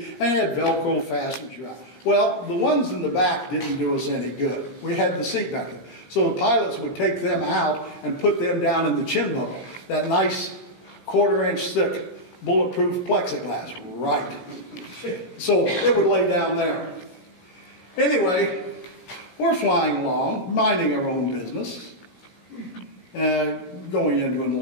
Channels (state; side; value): late; right; 17 ms